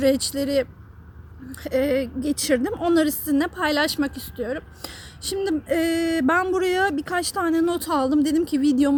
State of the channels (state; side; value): identical; both; correlation 1.00